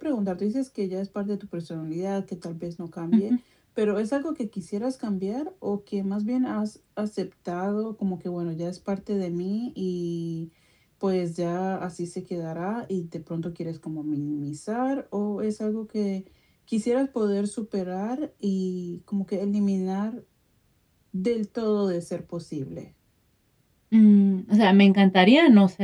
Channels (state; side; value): identical; both; correlation 1.00